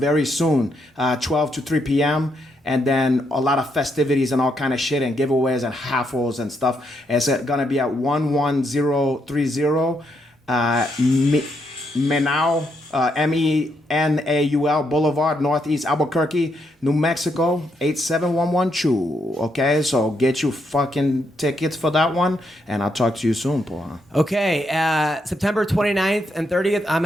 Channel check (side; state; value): both; normal; correlation 0.78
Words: soon, 12 to 3 p.m. And then a lot of festivities and all kind of shit and giveaways and raffles and stuff. It's gonna be at 11030 Menau, Menaul Boulevard, Northeast Albuquerque, New Mexico, 87112. Okay, so get you fucking tickets for that one, and I'll talk to you soon, Paul. Okay, September 29th and 30th, I'm